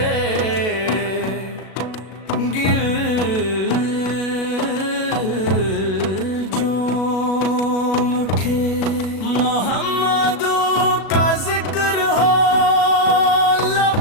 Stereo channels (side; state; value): right; late; 37 ms